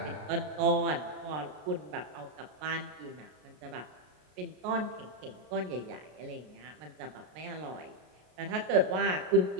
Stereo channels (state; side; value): late; left; 33 ms